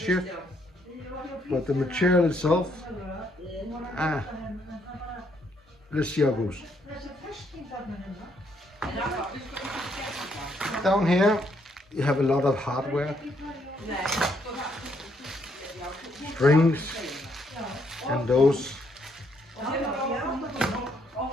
But the material itself, let's see how it goes. Down here, you have a lot of hardware. Strings and those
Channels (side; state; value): both; normal; correlation 0.72